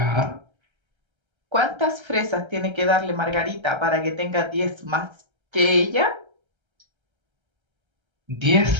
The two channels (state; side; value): late; left; 1.3 ms